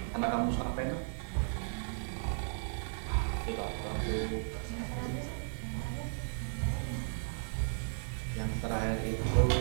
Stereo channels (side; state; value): left; silent; digital silence